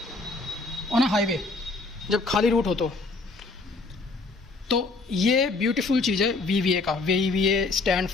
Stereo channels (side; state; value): right; quieter; 3.6 dB